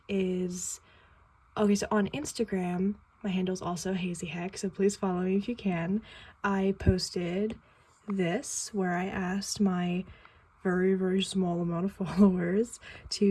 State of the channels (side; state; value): both; identical; correlation 1.00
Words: is, okay, so on Instagram, my handle is also Hazy Hex, so please follow me if you can. I posted this where I asked my very small amount of followers